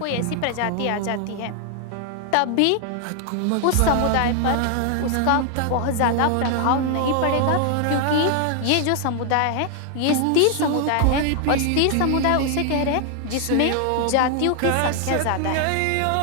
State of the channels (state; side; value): different; both; correlation 0.00